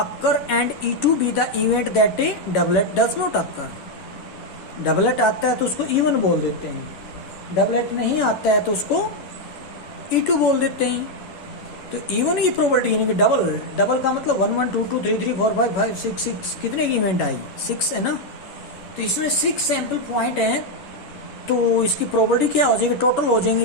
and E2 be the event that A doublet does not occur. Doublet आता है तो उसको इवन बोल देते हैं, डबलेट नहीं आता है तो उसको E2 बोल देते हैं. तो इवन की प्रोबेबिलिटी यानी कि डबल का मतलब 1 1 2 2 3 3 4 5 5 6 6 कितने की इवेंट आई, 6 है ना. तो इसमें 6 सैंपल पॉइंट है, तो इसकी प्रोबेबिलिटी क्या हो जाएगी, टोटल हो जाएंगे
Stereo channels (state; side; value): late; right; 11 ms